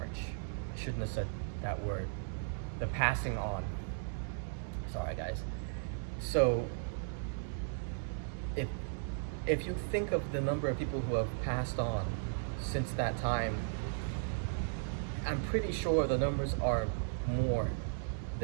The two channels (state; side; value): silent; left; 54 dB below the other